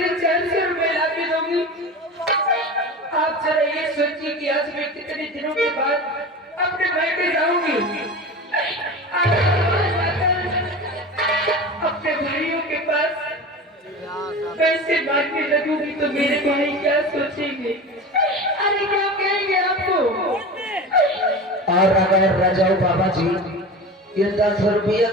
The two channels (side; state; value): both; normal; correlation 0.31